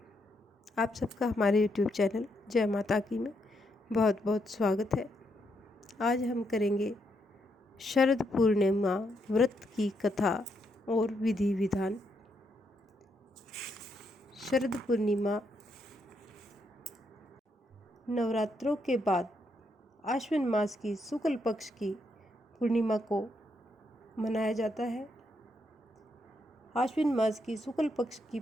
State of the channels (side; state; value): both; normal; correlation 0.78